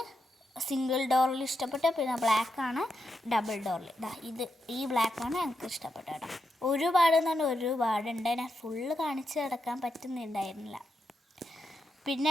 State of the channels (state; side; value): normal; both; correlation 0.85